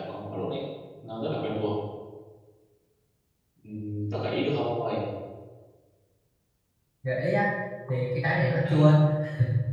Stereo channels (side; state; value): both; identical; correlation 1.00